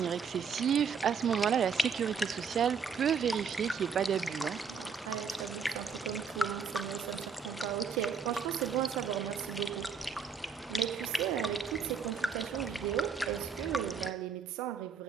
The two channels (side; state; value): left; quieter; 6.0 dB